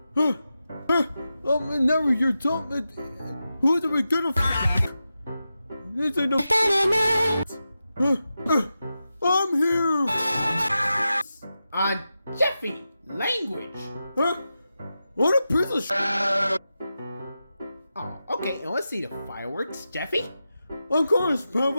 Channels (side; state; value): both; inverted; correlation -0.91